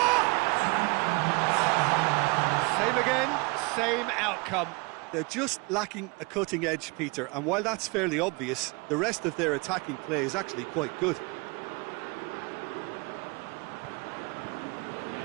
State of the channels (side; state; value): left; quieter; 27.5 dB